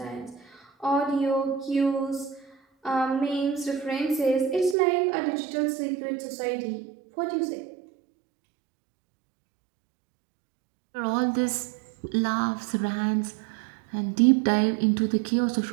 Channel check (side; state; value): left; drops out; at 4.8 s